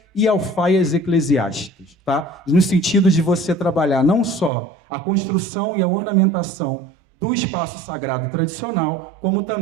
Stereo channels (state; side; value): drops out; left; at 4.5 s